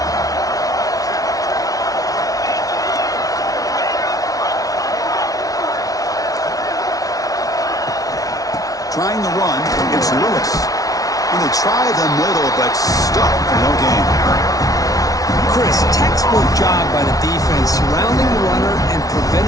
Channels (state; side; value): late; right; 0.18 ms